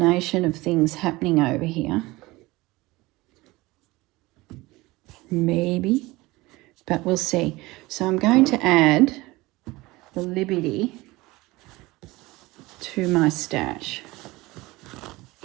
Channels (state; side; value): quieter; left; 20.8 dB